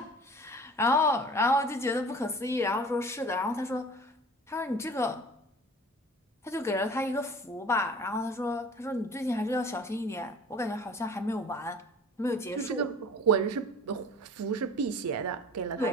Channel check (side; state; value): both; normal; correlation 0.44